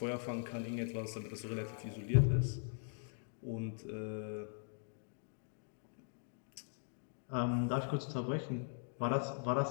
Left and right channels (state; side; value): silent; right; digital silence